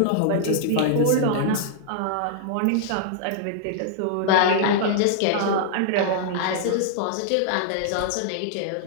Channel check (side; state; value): both; different; correlation -0.01